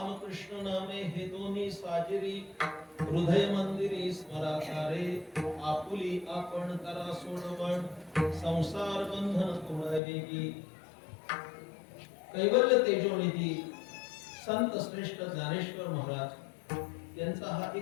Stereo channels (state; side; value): drops out; right; at 10.0 s